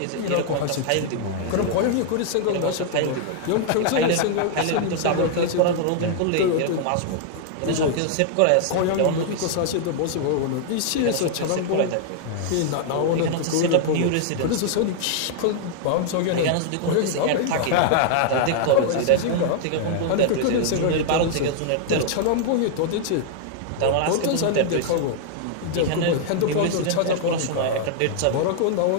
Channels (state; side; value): different; both; correlation 0.00